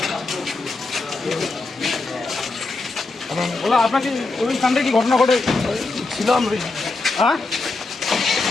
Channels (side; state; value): right; quieter; 3.5 dB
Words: বলো, আপনাকে ওই কাণ্ডে কি ঘটনা ঘটে ছিলাম? হ্যাঁ,